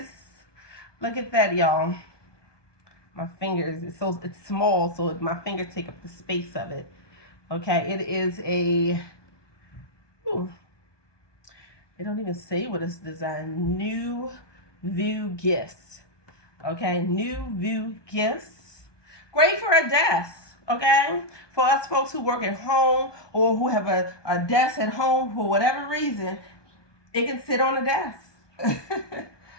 Look at that, y'all. My fingers, it's small, so my fingers take up the space of it. Okay, it is a, they don't even say what it's designed. New View Gifts. Okay, New View Gifts. Great for a desk. Okay, for us folks who work at home or who have a desk at home for whatever reason, it can sit on a desk.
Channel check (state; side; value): late; right; 1.2 ms